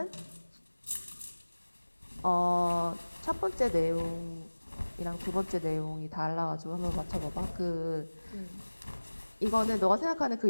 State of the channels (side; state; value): both; inverted; correlation -1.00